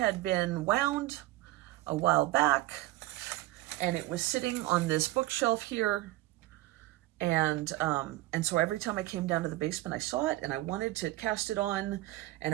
been wound a while back, and it was sitting on this bookshelf here. And so every time I came down to the basement, I saw it and I wanted to cast it on,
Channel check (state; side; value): quieter; left; 17.9 dB